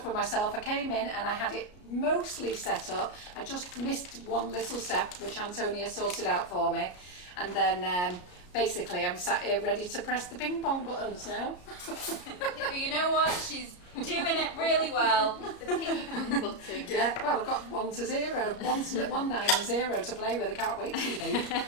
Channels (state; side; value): late; right; 33 ms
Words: with myself. I came in and I had it mostly set up. I just missed one little step, which Antonia sorted out for me, and then basically I'm sat here ready to press the ping pong buttons now. Yeah, but you know what? She's doing it really well. The ping pong button. Yeah, well, I've got 1 to 0, 1, 9 and 0 to play with. I can't wait to leave.